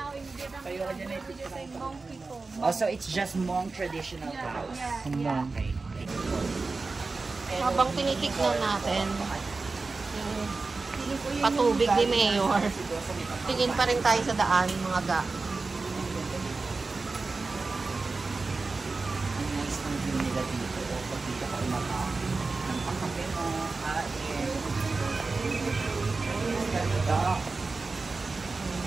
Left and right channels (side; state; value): left; quieter; 3.9 dB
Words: in Vietnam, we just say Hmong people. Also, it's just Hmong traditional house. Yeah. Okay. Habang tinitignan natin yung patubig ni Mayor, tingin pa rin tayo sa daan, mga ga. Ang nice ng view nila dito. Pag dito ka umakaw ng pakape mo, kain. Duck.